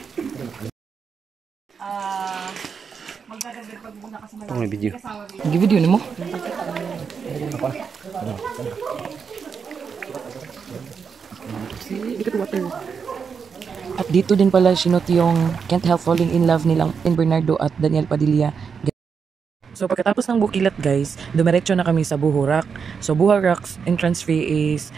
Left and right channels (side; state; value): left; quieter; 6.2 dB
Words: Ito may video. Gi-video ni mo? At dito din pala sinot yung Can't Help Falling in Love nilang in Bernardo at Daniel Padilla. So pagkatapos ng Bukilat guys, dumiretso na kami sa Buhurak. So Buhurak's entrance fee is